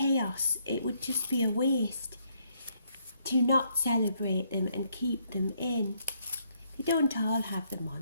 it would just be a waste to not celebrate them and keep them in. They don't all have them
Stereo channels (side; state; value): both; inverted; correlation -0.72